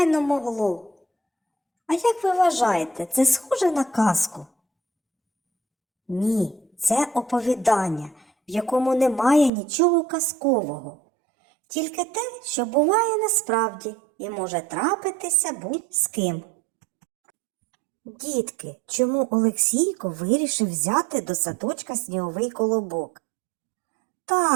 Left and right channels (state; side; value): drops out; left; at 9.5 s